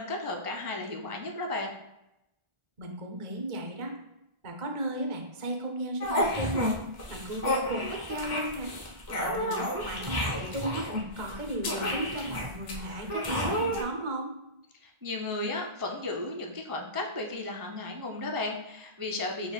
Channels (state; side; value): late; left; 1.4 ms